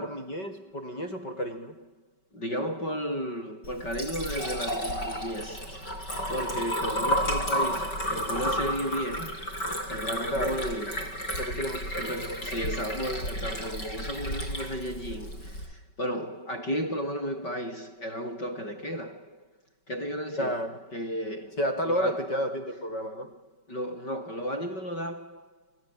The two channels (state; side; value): late; right; 5.2 ms